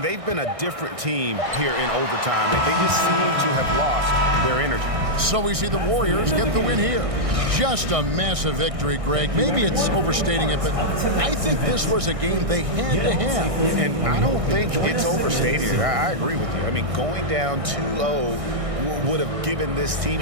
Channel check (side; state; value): left; late; 1.6 ms